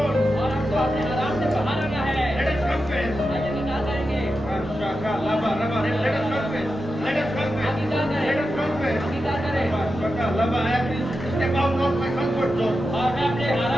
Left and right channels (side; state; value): both; normal; correlation 0.90